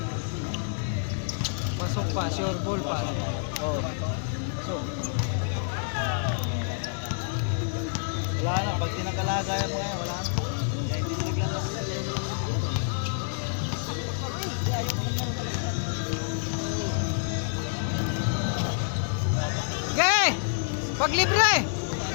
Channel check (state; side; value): silent; right; digital silence